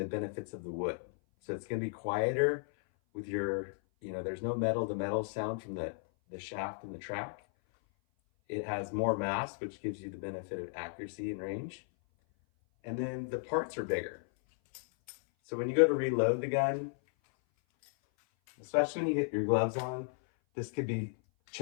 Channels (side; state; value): right; silent; 55 dB below the other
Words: benefits of the wood. So it's gonna be quieter with your, there's no metal to metal sound from the shaft and the track. It has more mass, which gives you the benefit of accuracy and range. And then the parts are bigger. So when you go to reload the gun, especially when you get your gloves on, this could be